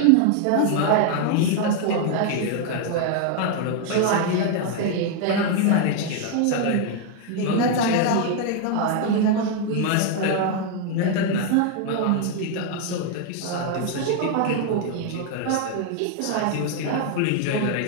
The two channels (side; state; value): both; different; correlation 0.00